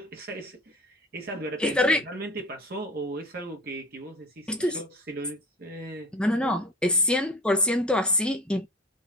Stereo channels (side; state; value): both; normal; correlation 0.38